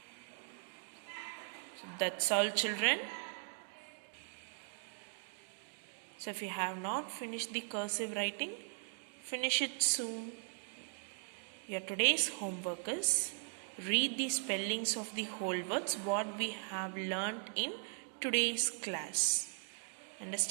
So that's all, children. So if you have not finished the cursive writing, finish it soon. Your today's homework is read the spellings of the whole words what we have learnt in today's class.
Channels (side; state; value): left; silent; 52 dB below the other